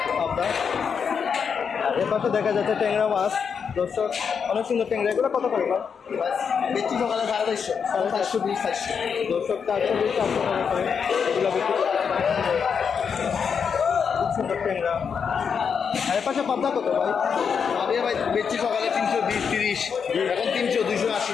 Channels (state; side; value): quieter; right; 6.5 dB